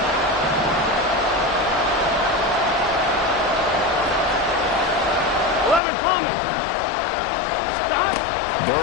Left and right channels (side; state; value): right; drops out; at 5.8 s